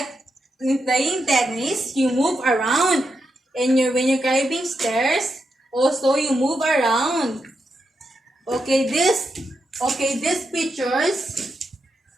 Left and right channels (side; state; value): both; normal; correlation 0.85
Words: in playing tennis, you move around. And when you're climbing stairs, also you move around. Okay, these pictures